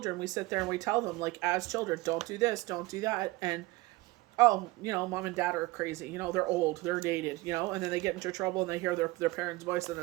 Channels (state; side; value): quieter; left; 21.3 dB